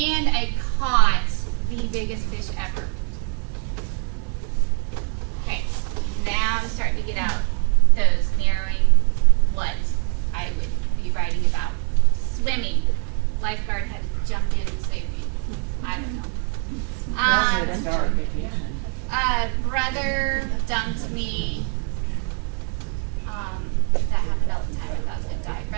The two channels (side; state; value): left; quieter; 38.3 dB